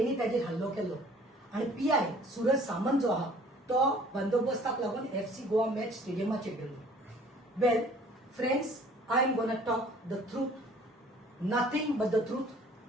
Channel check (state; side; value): normal; both; correlation 0.53